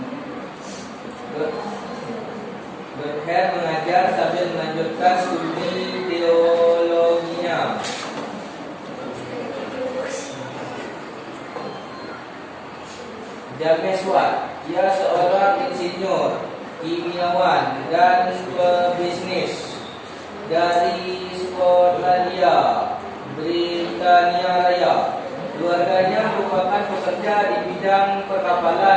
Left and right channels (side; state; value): both; identical; correlation 1.00